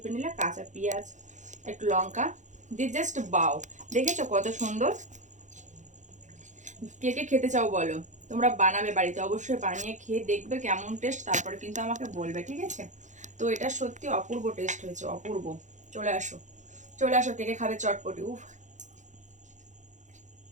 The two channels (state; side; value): late; left; 0.35 ms